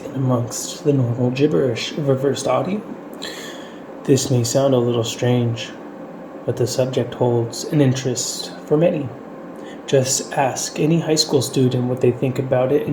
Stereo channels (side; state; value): both; identical; correlation 1.00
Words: amongst the normal gibberish of reversed audio? This may sound a little strange, but the subject holds an interest for many. Just ask any high school student what they think about it,